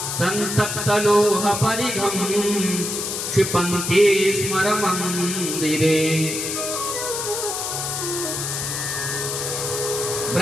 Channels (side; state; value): left; noise; hiss, 3 dB below the sound